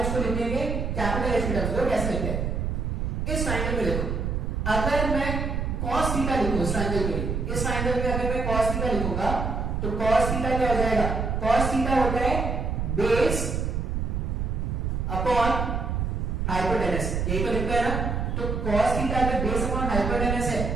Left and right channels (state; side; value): noise; right; rumble, 1 dB below the sound